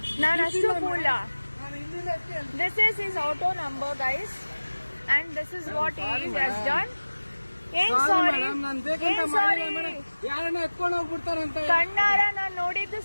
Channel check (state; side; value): inverted; both; correlation -1.00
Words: ನಾನು ಅಷ್ಟು fool. This is his auto number guys and this is what he has done. ಏನ್ ಸಾರಿ ಕಣ್ಣಾರ ನಾನ್ ನೋಡಿದ್ದು